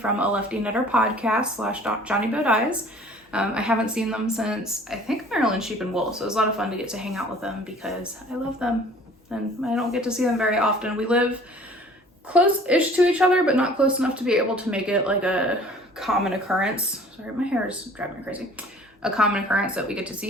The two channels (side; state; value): both; normal; correlation 0.50